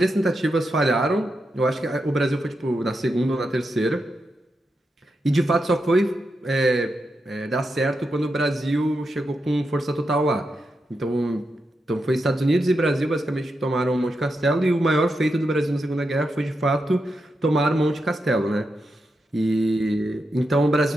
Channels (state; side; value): normal; both; correlation 0.86